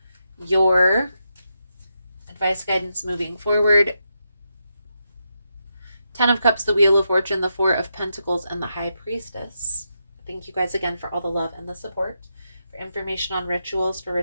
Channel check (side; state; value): both; inverted; correlation -0.84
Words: your advice, guidance moving forward: Ten of Cups, the Wheel of Fortune, the Four of Pentacles, and the High Priestess. Thank you guys again for all the love and the support. For information on rituals, for